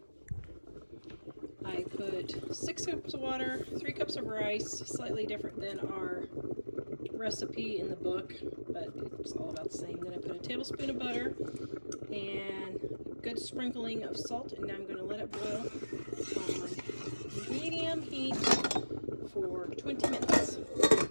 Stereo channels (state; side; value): inverted; both; correlation -1.00